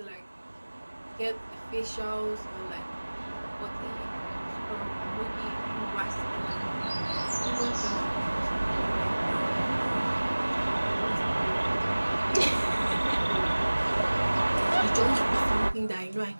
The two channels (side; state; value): both; inverted; correlation -1.00